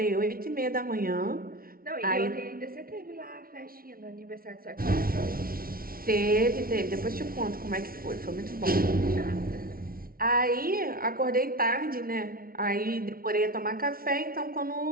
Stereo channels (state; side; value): late; left; 0.43 ms